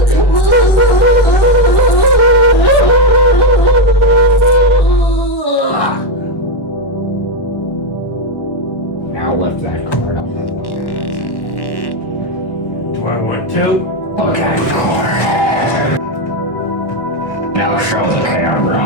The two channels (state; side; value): late; right; 1.1 ms